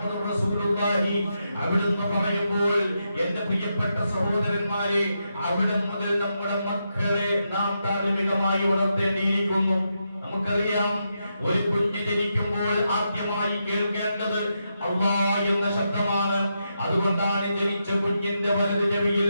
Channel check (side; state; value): both; inverted; correlation -0.84